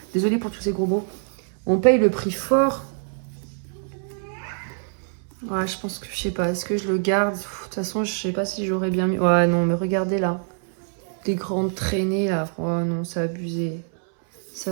Désolée pour tous ces gros mots. On paye le prix fort. Ouais, je pense que, je sais pas, est-ce que je le garde? De toute façon, je sais pas si j'aurais bien mis... Ouais, non, mais regardez là. Des grandes traînées là. Oh non, c'est abusé. C'est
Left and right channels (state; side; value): silent; left; 62 dB below the other